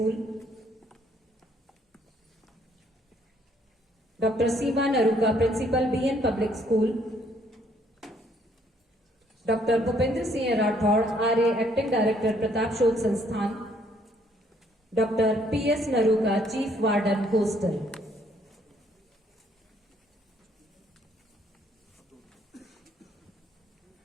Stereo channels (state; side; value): normal; both; correlation 0.66